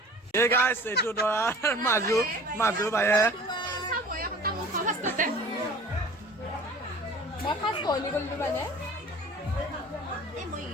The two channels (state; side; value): normal; both; correlation 0.44